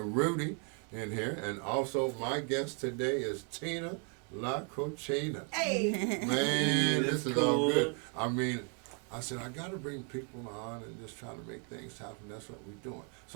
Rudy in here, and also my guest today is Tina La Cochina. Hey! Man, this is cool. all good. I mean, I said, I got to bring people on and just try to make things happen. That's what we're doing.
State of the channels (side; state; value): left; quieter; 36.9 dB